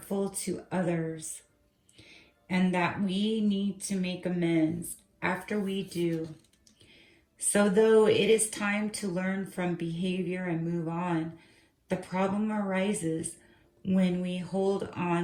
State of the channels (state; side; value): identical; both; correlation 1.00